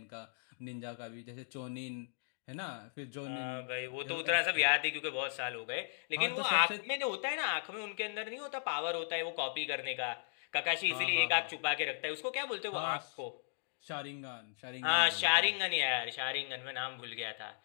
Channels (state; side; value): silent; right; digital silence